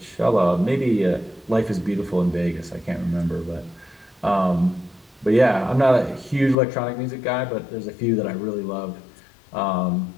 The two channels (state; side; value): drops out; right; at 6.6 s